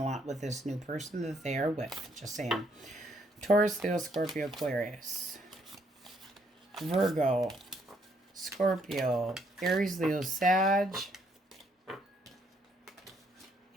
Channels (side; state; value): both; normal; correlation 0.70